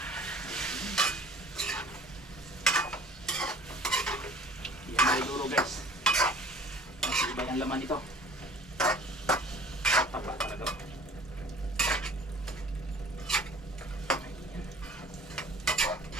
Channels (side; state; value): both; normal; correlation 0.48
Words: Yan na siguro, guys. ang laman nito. Taba talaga.